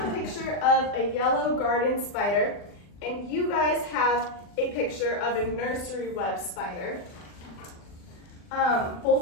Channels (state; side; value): late; right; 40 ms